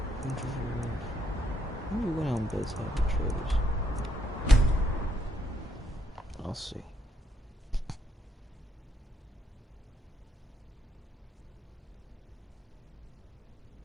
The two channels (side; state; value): both; normal; correlation 0.75